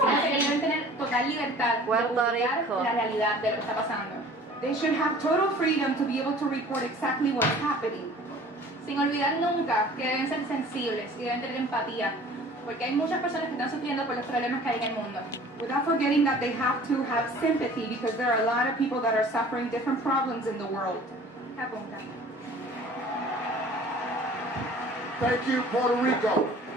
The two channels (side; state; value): both; normal; correlation 0.48